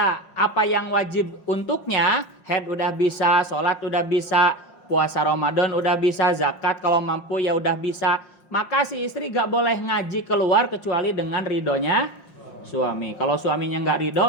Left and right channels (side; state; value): right; late; 5.6 ms